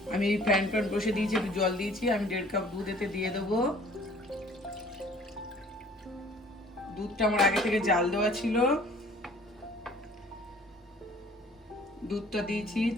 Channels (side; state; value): both; normal; correlation 0.53